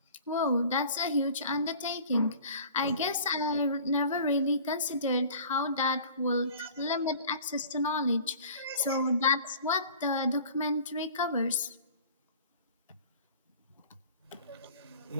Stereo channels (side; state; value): both; inverted; correlation -0.45